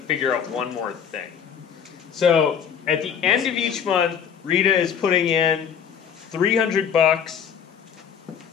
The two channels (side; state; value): right; quieter; 7.8 dB